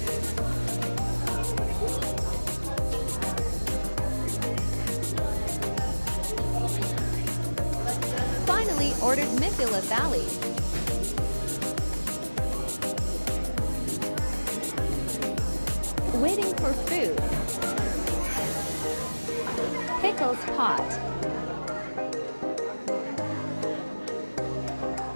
Finally ordered Mithila Thali. Waiting for food. Pickles pot.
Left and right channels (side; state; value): both; inverted; correlation -1.00